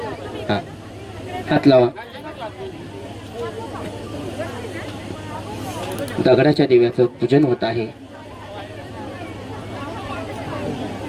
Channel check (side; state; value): both; identical; correlation 1.00